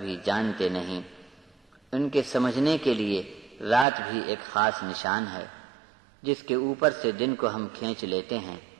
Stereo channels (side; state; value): left; drops out; at 3.9 s